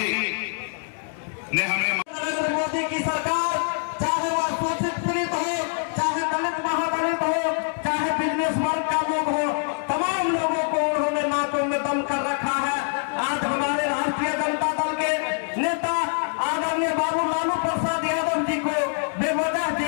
ने हमें नरेंद्र मोदी की सरकार, चाहे वह शोषित पीड़ित हो, चाहे दलित महादलित हो, चाहे बिजनेस वर्ग का लोग हो, तमाम लोगों को उन्होंने नाकों में दम कर रखा है। आज हमारे राष्ट्रीय जनता दल के नेता आदरणीय बाबू लालू प्रसाद यादव जी को बेवजह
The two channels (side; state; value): right; silent; 62 dB below the other